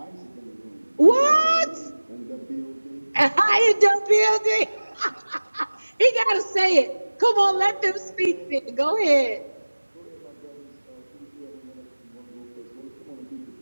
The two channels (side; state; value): both; inverted; correlation -1.00